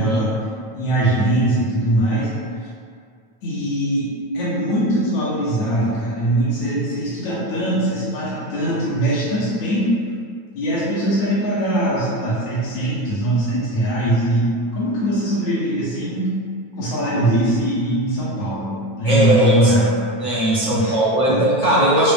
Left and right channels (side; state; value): right; late; 9.2 ms